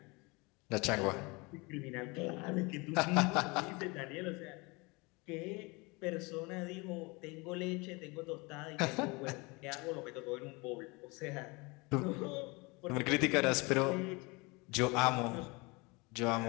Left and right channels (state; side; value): quieter; right; 26.6 dB